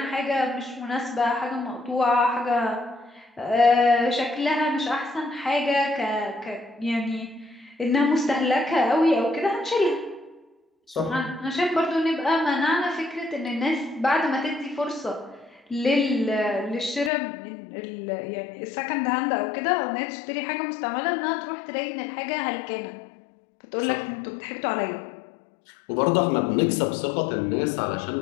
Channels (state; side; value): drops out; right; at 17.1 s